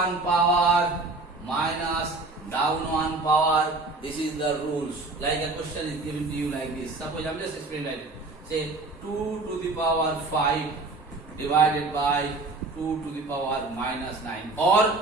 power minus down one power. This is the rules. Like a question is given to you like this. Suppose I am just explaining like this. Say 2 to the power 5 divided by 2 to the power minus 9.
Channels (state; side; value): quieter; left; 3.3 dB